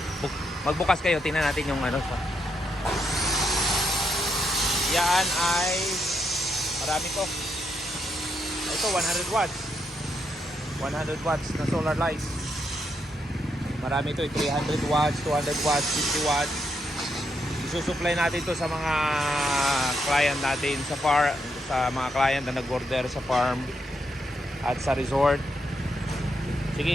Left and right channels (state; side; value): normal; both; correlation 0.79